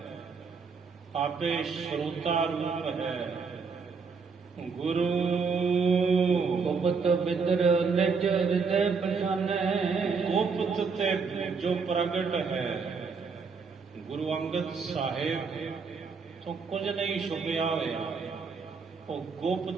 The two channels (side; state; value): left; quieter; 5.2 dB